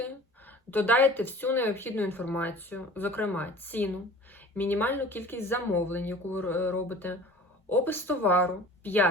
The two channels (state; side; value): normal; both; correlation 0.44